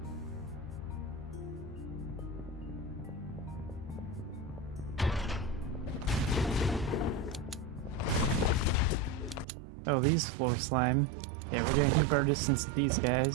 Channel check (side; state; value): left; drops out; at 9.5 s